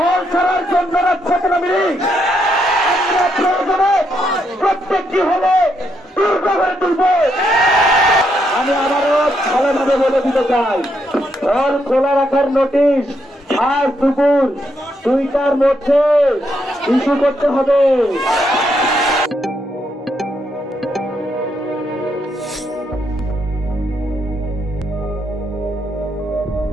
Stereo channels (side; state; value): both; normal; correlation 0.77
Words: হল ছাড়ার জন্য রাজপথে নামি। আমরা প্রয়োজনে প্রত্যেকটি হলে দুর্গ করে তুলব। আমি আবারও ভালোভাবে বলে দিতে চাই, হল খোলা রাখার নোটিশ আজ দুপুর 2টার মধ্যে ইস্যু করতে হবে।